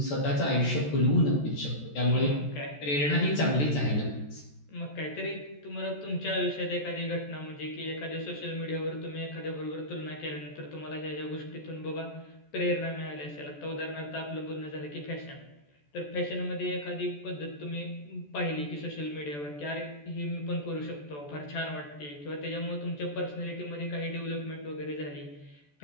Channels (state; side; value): late; right; 14 ms